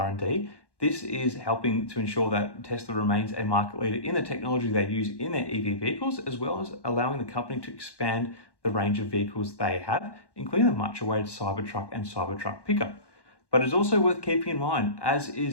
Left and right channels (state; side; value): late; right; 1.1 ms